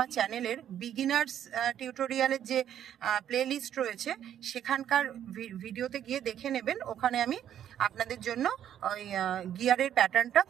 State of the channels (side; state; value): left; quieter; 10.3 dB